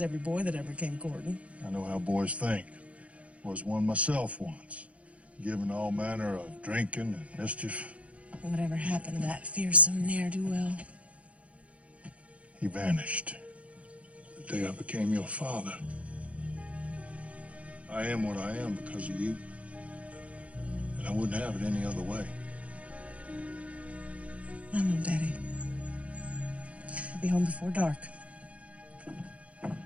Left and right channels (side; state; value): left; late; 0.064 ms